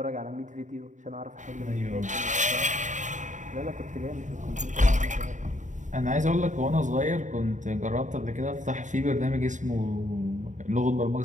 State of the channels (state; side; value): late; left; 0.36 ms